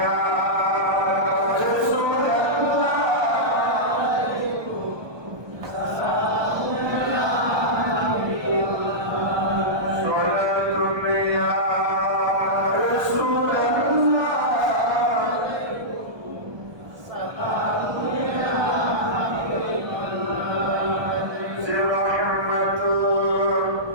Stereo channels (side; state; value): left; late; 1.2 ms